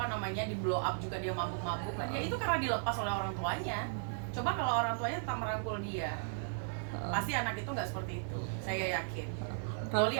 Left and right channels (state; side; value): silent; left; digital silence